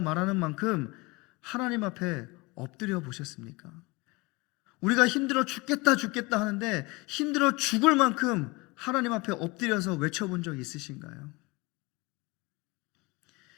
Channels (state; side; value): quieter; right; 25.0 dB